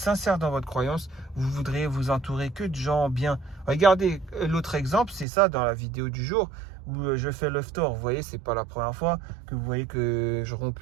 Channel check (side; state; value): left; drops out; at 5.2 s